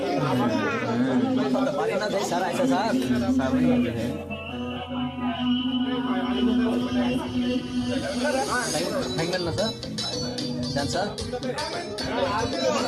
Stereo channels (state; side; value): identical; both; correlation 1.00